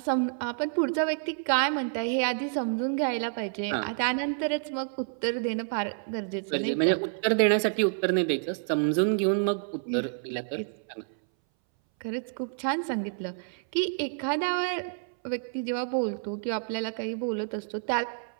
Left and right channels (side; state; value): left; silent; 59 dB below the other